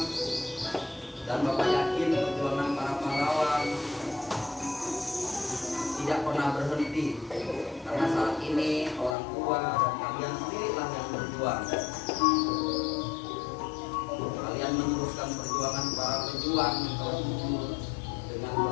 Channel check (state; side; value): drops out; right; at 9.2 s